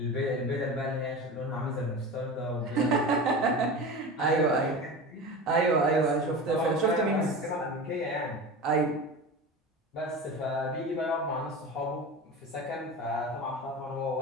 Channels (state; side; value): normal; both; correlation 0.30